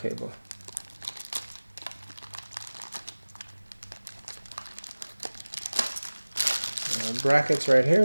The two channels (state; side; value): inverted; both; correlation -1.00